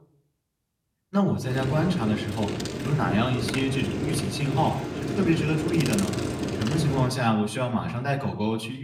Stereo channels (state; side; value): identical; both; correlation 1.00